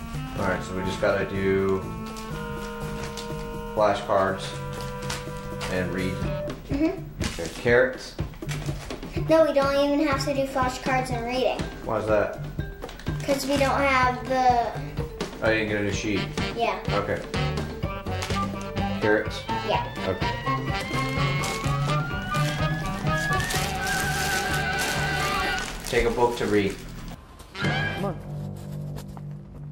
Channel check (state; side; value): identical; both; correlation 1.00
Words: Alright, so we just gotta do flashcards and read. Mm-hmm. Okay, carrots. No, we don't even have to do flashcards and reading. Why's that? Because we don't have the... Oh, you didn't get a new sheet. Yeah. Okay. Carrots? Yeah. Okay. Take a book to read. Come on.